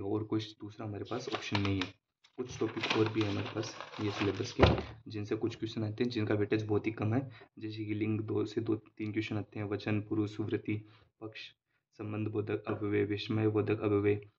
और कोई दूसरा हमारे पास ऑप्शन नहीं है। कुछ टॉपिक और भी है हमारे पास ये सिलेबस के, जिनसे कुछ क्वेश्चन आते हैं जिनका वेटेज बहुत ही कम है, जैसे कि लिंग 2 से 3 क्वेश्चन आते हैं, वचन, पुरुष, सुवृत्ति, पक्ष, संबंध बोधक अव्यय, विस्मय बोधक अव्यय,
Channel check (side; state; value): both; identical; correlation 1.00